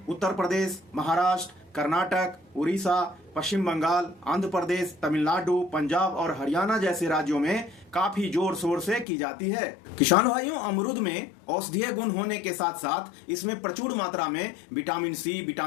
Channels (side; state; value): right; drops out; at 9.1 s